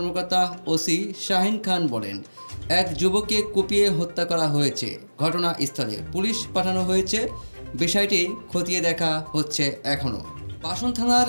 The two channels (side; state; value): both; inverted; correlation -1.00